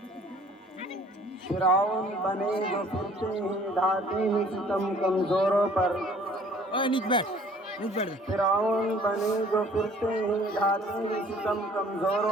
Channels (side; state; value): both; normal; correlation 0.54